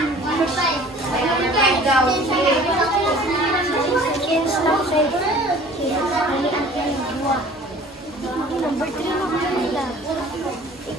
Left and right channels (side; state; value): both; normal; correlation 0.48